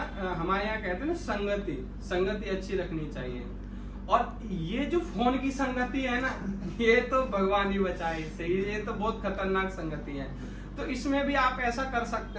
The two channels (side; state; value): both; identical; correlation 1.00